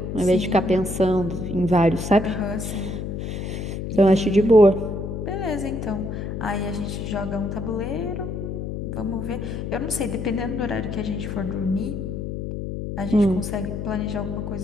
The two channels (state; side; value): noise; left; hum, 5 dB below the sound